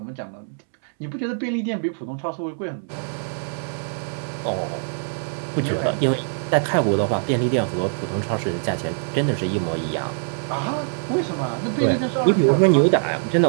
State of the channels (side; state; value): left; silent; 63 dB below the other